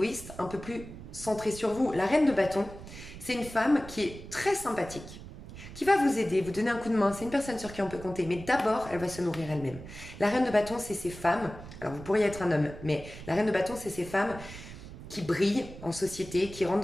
un peu plus centré sur vous. La reine de bâton, c'est une femme qui est très sympathique, qui va vous aider, vous donner un coup de main. C'est une personne sur qui on peut compter, mais d'abord, elle va se nourrir elle-même. La reine de bâton, c'est ces femmes, alors vous pourriez être un homme, mais la reine de bâton, c'est ces femmes qui brillent en société, qui rentrent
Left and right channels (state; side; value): noise; right; rumble, 14 dB below the sound